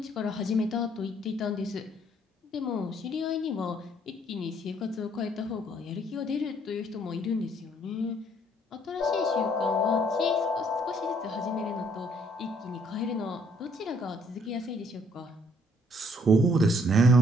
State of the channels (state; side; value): normal; both; correlation 0.65